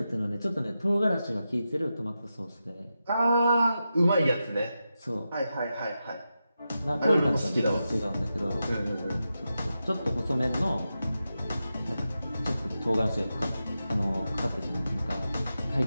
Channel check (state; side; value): inverted; both; correlation -0.89